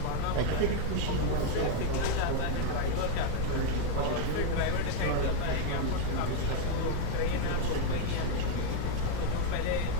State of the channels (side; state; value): both; different; correlation 0.00